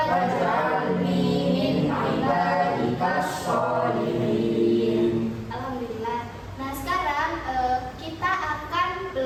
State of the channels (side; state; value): both; identical; correlation 1.00